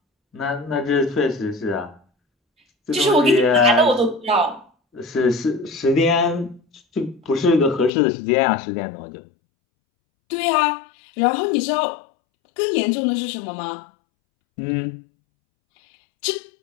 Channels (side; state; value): right; drops out; at 7.9 s